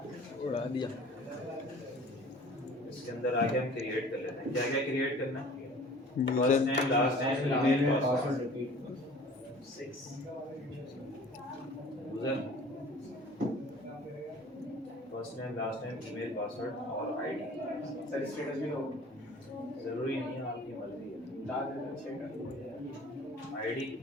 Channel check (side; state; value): both; normal; correlation 0.47